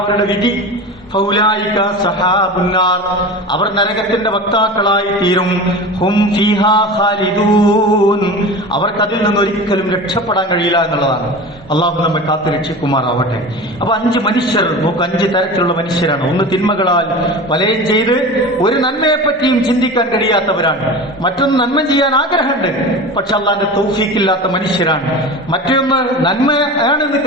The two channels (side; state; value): both; normal; correlation 0.32